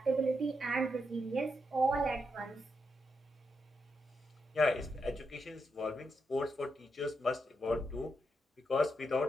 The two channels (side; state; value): both; normal; correlation 0.83